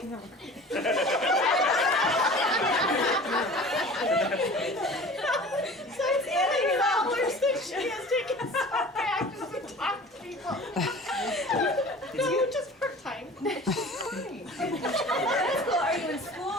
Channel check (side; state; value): both; normal; correlation 0.41